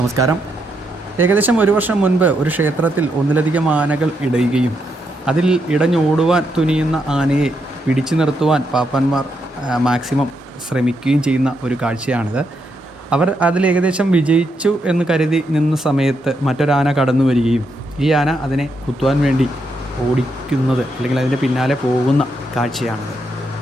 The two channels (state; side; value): normal; both; correlation 0.80